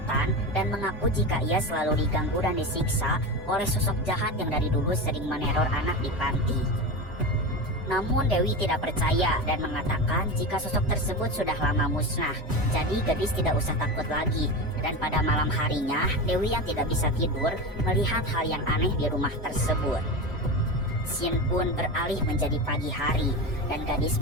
dan mengaku jika ia selalu diganggu dan disiksa oleh sosok jahat yang dari dulu sering meneror anak di panti. Namun Dewi tidak percaya dan mengatakan jika sosok tersebut sudah lama musnah, jadi Gadis tidak usah takut lagi. Dan pada malam harinya, Dewi yang tidak bisa tidur melihat hal yang aneh di rumah tersebut. Scene pun beralih menjadi pagi hari dan Gadis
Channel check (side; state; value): both; normal; correlation 0.23